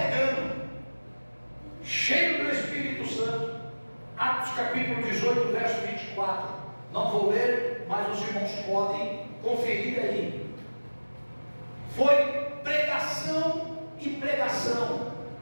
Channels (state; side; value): inverted; both; correlation -1.00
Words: cheio do Espírito Santo. Atos capítulo 18, verso 24. Não vou ler, mas os irmãos podem conferir aí. Foi pregação e pregação